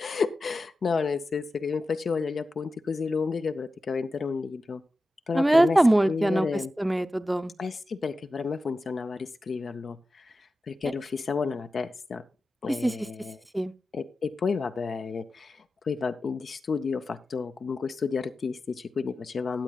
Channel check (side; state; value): both; normal; correlation 0.93